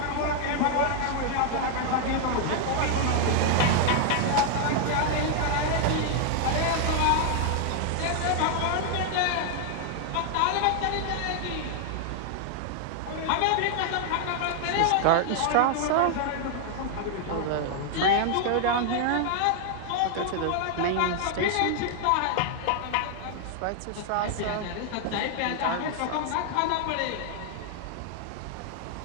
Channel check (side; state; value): both; different; correlation 0.00